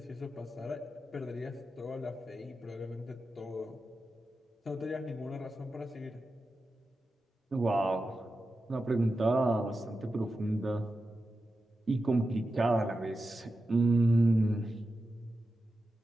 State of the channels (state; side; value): normal; both; correlation 0.91